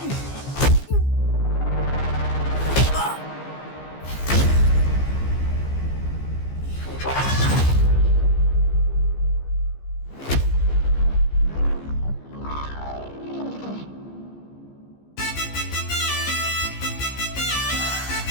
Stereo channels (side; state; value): right; late; 15 ms